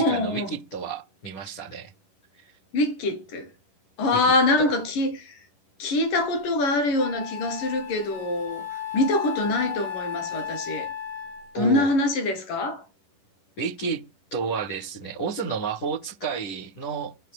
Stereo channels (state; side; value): late; right; 10 ms